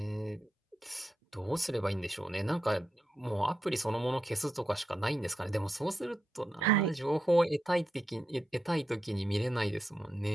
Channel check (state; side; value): normal; both; correlation 0.86